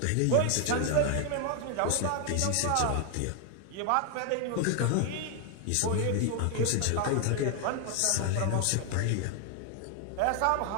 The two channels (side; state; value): both; different; correlation 0.00